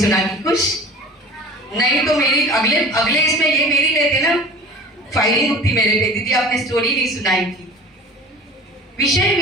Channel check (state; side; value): normal; both; correlation 0.41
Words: की। खुश नहीं तो मेरी अगले अगले इसमें ये मेरी लेते ना, फायरिंग उठती मेरे पे, दीदी आपने स्टोरी नहीं सुनाई थी। विषय